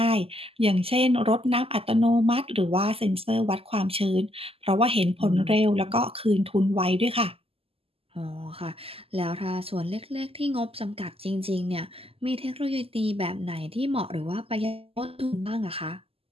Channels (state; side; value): late; left; 0.28 ms